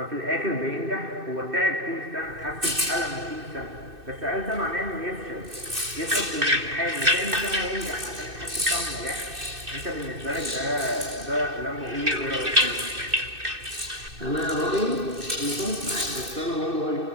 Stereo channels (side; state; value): left; late; 2.6 ms